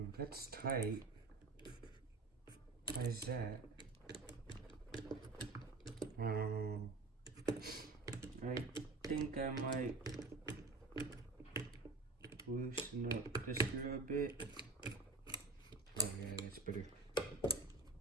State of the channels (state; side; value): quieter; left; 3.7 dB